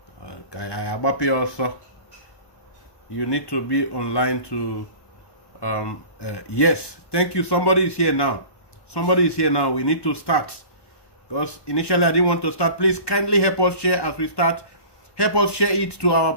also, you need to be online to. Yes, thank you. Somebody is here now. We need to start because initially I didn't want to start. Please kindly help us share as we start. Help us share it to our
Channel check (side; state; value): right; late; 1.1 ms